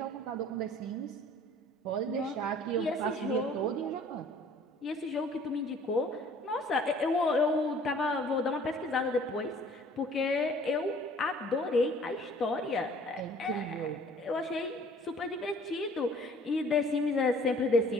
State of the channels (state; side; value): normal; both; correlation 0.53